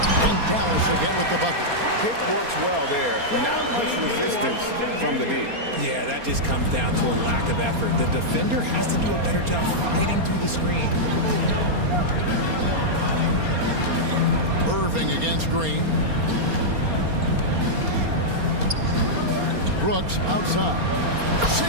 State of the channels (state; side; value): late; left; 4.3 ms